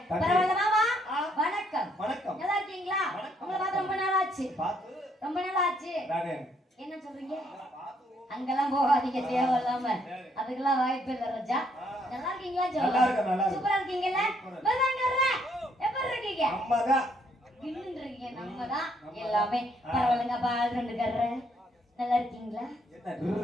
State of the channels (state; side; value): normal; both; correlation 0.70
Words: பரவாயில்ல மாமா, வணக்கம். நல்லா இருக்கீங்களா? உங்களை பார்த்து ரொம்ப நாள் ஆச்சு. ரொம்ப நாள் ஆச்சு. என்ன சொல்றீங்க? அங்கெல்லாம் போகாதீங்க தேவையில்லாம, அதுக்கெல்லாம் வாய்ப்பு இல்லை ராஜா. நல்லா இருக்கீங்களா? சூப்பரா இருக்கீங்கல்ல? எப்படி இருக்கீங்க? நம்மதான் எல்லாமே பரவாயில்லைங்க. பால் ரெண்டு கர்ற நல்லா இருக்கீங்களா?